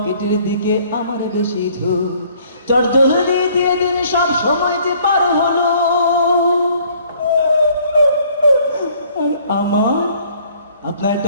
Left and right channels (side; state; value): both; inverted; correlation -0.59